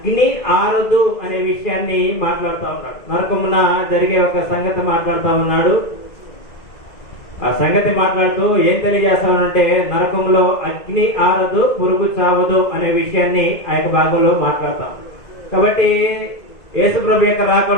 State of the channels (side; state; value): right; late; 2.0 ms